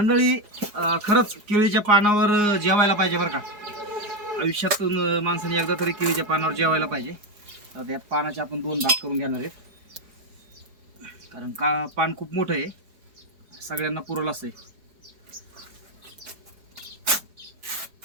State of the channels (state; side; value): late; left; 4.8 ms